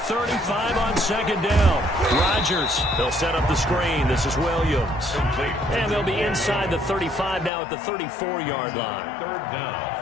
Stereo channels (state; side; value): drops out; right; at 7.5 s